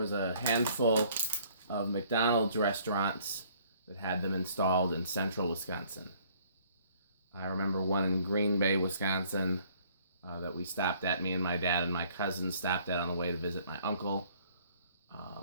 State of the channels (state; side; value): inverted; both; correlation -0.60